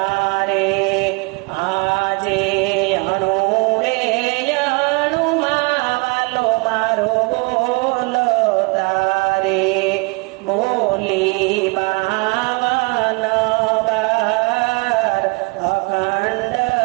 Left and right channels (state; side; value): quieter; left; 29.7 dB